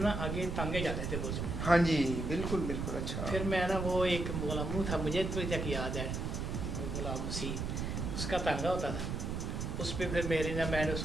आगे टांगे जाते थे बुर्ज में। हाँ जी बिल्कुल बिल्कुल। अच्छा, फिर मैं ना वो एक गुलामू था, मुझे तो तक याद है, गुलाम मसीह, उसका तांगा होता था, उस पर फिर मेरी ना मैंने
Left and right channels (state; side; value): noise; right; rumble, 2 dB below the sound